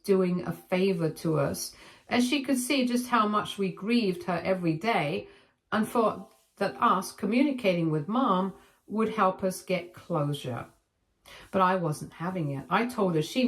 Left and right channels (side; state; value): both; identical; correlation 1.00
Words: a favor to us, as she could see just how much we grieved her every day, and thought that us communicating with Mom would help us get closure. But I wasn't having it. I told her she